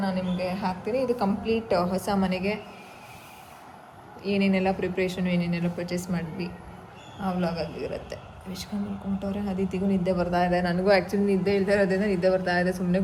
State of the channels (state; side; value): identical; both; correlation 1.00